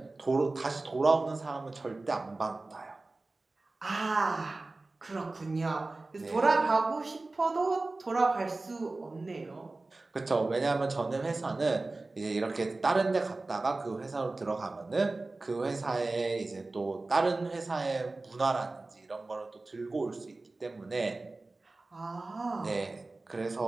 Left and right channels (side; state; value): left; quieter; 3.2 dB